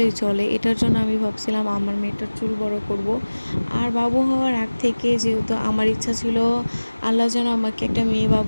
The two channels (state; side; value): inverted; both; correlation -1.00